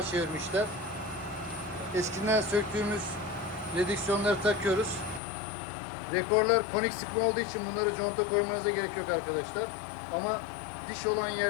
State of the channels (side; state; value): right; drops out; at 5.2 s